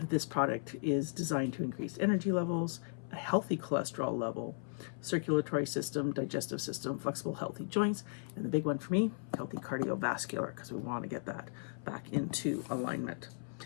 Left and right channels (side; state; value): right; silent; 54 dB below the other